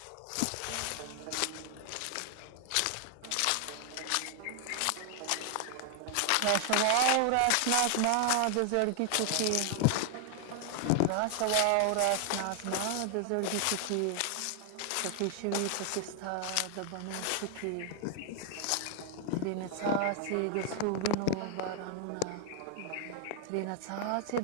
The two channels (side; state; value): both; different; correlation 0.00